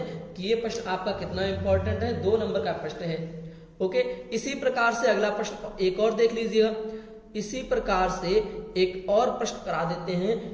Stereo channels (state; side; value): identical; both; correlation 1.00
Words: कि ये प्रश्न आपका कितना इंपॉर्टेंट है, 2 नंबर का प्रश्न है। ओके, इसी प्रकार से अगला प्रश्न एक और देख लीजिएगा, इसी प्रकार से एक और प्रश्न करा देते